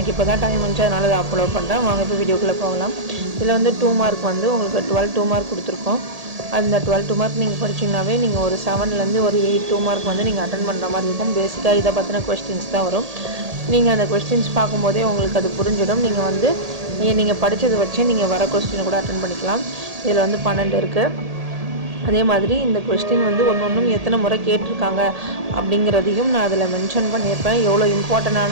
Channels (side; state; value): left; late; 1.8 ms